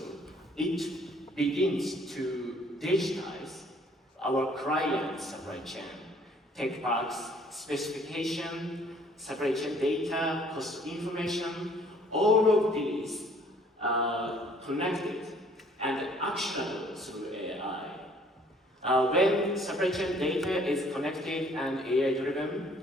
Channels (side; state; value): both; normal; correlation 0.59